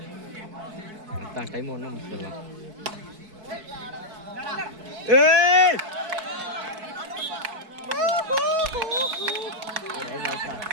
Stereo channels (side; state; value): left; late; 4.6 ms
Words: டைம் ஒன்றும் முடிச்சிடலாம்.